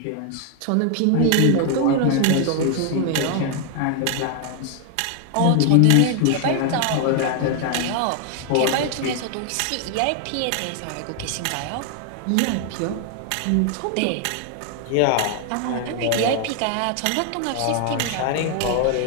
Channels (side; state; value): both; different; correlation 0.00